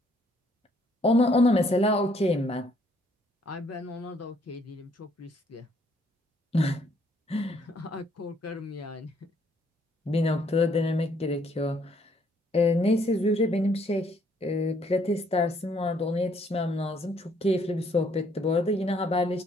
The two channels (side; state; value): both; normal; correlation 0.66